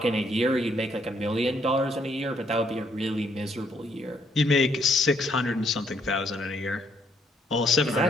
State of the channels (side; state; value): both; normal; correlation 0.70